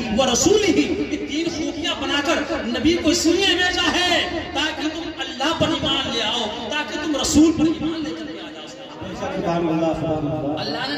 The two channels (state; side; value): identical; both; correlation 1.00